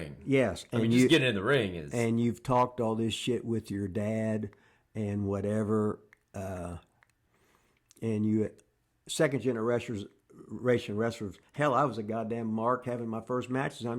Yes. I mean, just getting in the ring is... And you've talked all this shit with your dad and whatever. And you, second generation wrestlers, hell, I was a goddamn mark having my first matches. I'm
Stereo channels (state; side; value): identical; both; correlation 1.00